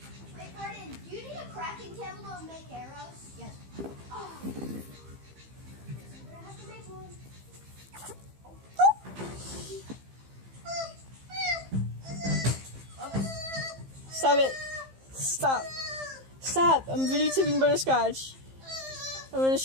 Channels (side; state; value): left; late; 15 ms